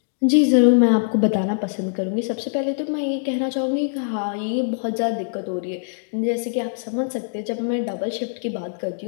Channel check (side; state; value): right; silent; digital silence